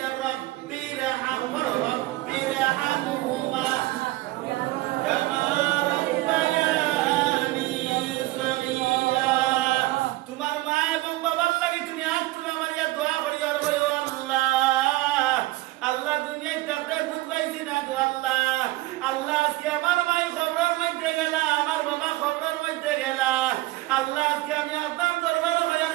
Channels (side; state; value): left; quieter; 18.6 dB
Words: রব্বিরহামহুমা কামা রাব্বায়ানি সগীরা। তোমার মা এবং বাবার লাগি তুমি আজ তুমি আমার ইয়া দোয়া করিও, আর বলো আল্লাহ, আল্লাহ দুনিয়ায় থাকতে বুঝ পাইছি না গো আল্লাহ। আল্লাহ আজকে আমার মায়ের খবরের মধ্যে গেলা, আমার বাবা খবরের মধ্যে গেলা। আল্লাহ আজকে আমি আপনার দরবারে হইয়ার